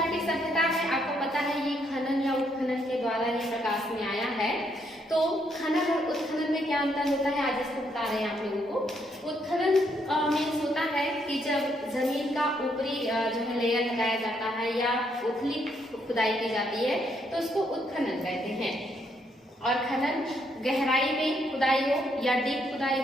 सभ्यता है आपको पता है ये खनन या उत्खनन के द्वारा ये प्रकाश में आया है। तो खनन और उत्खनन में क्या अंतर होता है आज इसको बता रहे हैं आप लोगों को। उत्खनन मीन्स होता है कि जब जमीन का ऊपरी जो है लेयर लगाया जाता है या उथली खुदाई की जाती है तो उसको उत्खनन कहते हैं। और खनन गहराई में खुदाई हो या डीप खुदाई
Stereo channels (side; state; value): both; normal; correlation 0.74